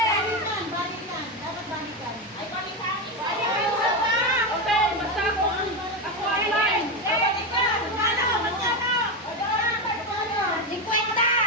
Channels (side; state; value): both; normal; correlation 0.12